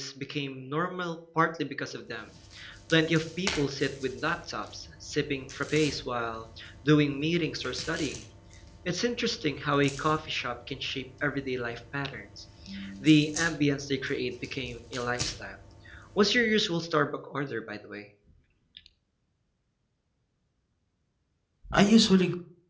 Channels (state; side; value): identical; both; correlation 1.00